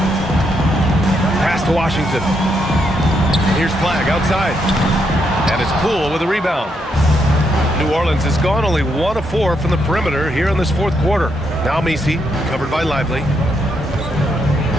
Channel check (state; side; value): normal; both; correlation 0.78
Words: Pass to Washington. Here's Flag outside. And it's Poole with a rebound. New Orleans has gone only 1 of 4 from the perimeter here in this fourth quarter. Now Misi, covered by Lively.